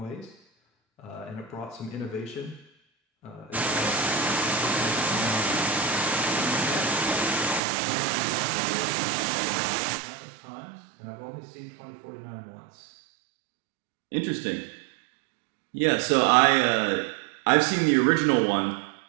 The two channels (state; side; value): drops out; left; at 7.6 s